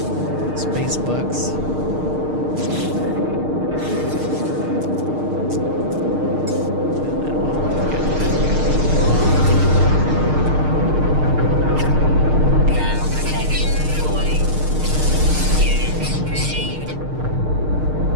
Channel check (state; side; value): late; left; 6.5 ms